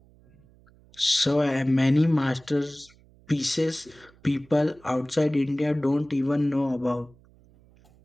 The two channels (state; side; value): noise; right; hum, 28 dB below the sound